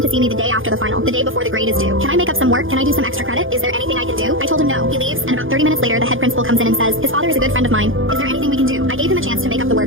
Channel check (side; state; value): left; late; 0.59 ms